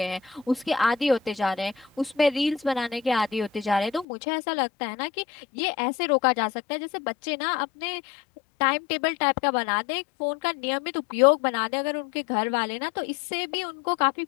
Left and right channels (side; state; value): right; drops out; at 4.0 s